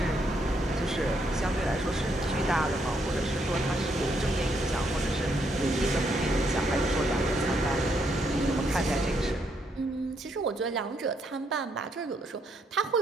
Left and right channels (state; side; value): normal; both; correlation 0.75